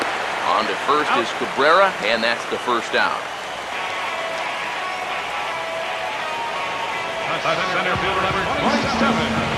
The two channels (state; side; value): identical; both; correlation 1.00